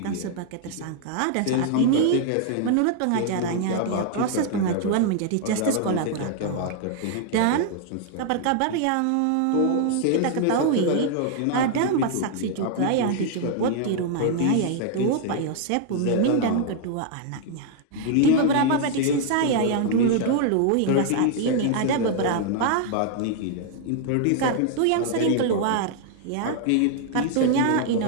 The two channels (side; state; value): both; different; correlation 0.00